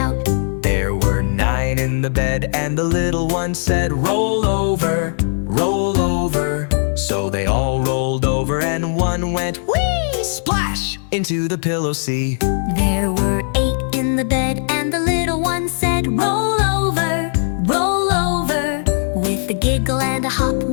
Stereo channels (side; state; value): right; silent; digital silence